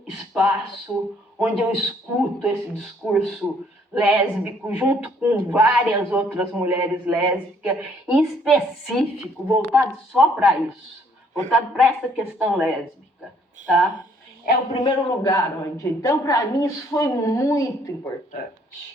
espaço onde eu escuto esse discurso lésbico, junto com várias outras mulheres lésbicas, em específico, voltado só para isso, voltado para essa questão lésbica, tá? É o primeiro lugar onde... Então, para mim, isso foi muito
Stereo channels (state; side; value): normal; both; correlation 0.64